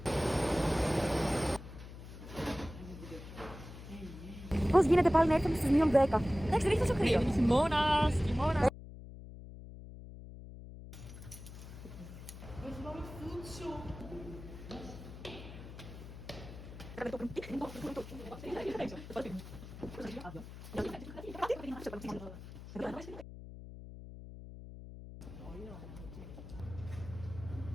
Πώς γίνεται πάλι να έρθουμε στις μείον 10. Εντάξει, δεν έχει τόσο κρύο. Χειμώνας, χειμώνας.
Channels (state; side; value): noise; left; hum, 13 dB below the sound